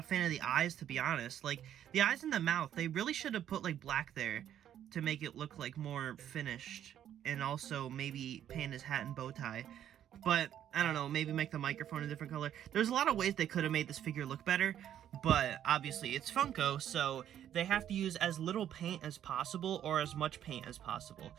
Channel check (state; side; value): quieter; left; 10.5 dB